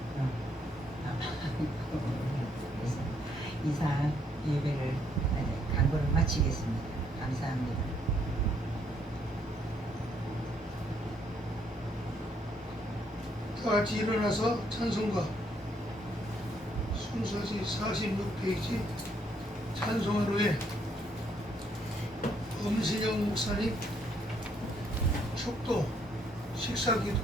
이사 예배를 강구를 마치겠습니다. 감사합니다. 다 같이 일어나서 찬송가 순서지 46페이지 찬송하루에 엄신영 목사님 축도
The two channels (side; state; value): both; normal; correlation 0.70